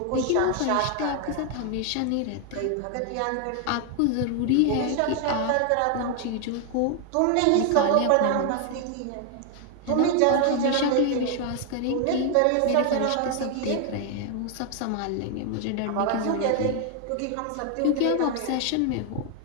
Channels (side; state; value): both; different; correlation 0.00